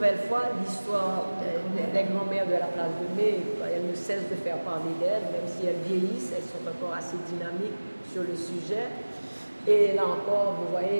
fois, l'histoire des grands-mères de la place de Mai, elles ne cessent de faire parler d'elles, même si elles vieillissent, elles sont encore assez dynamiques sur le sujet. Et là encore, vous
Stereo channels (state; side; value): inverted; both; correlation -1.00